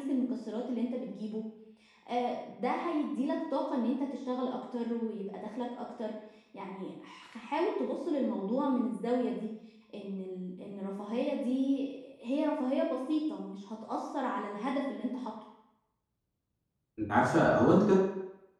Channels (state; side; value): identical; both; correlation 1.00